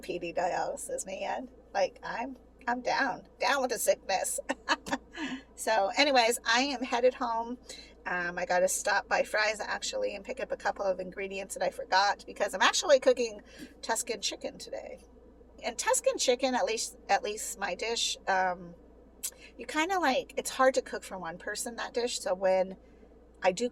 PD dialysis, man. Like, I'm down with the sickness. So anyways, I am headed home. I got to stop by Fry's actually and pick up a couple of ingredients that I forgot, because I'm actually cooking Tuscan chicken today. And Tuscan chicken, at least my dish, you kind of like, it's hard to cook for one person, that dish. So when I do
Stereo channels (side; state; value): both; identical; correlation 1.00